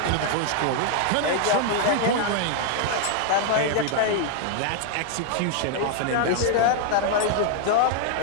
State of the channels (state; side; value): different; both; correlation 0.00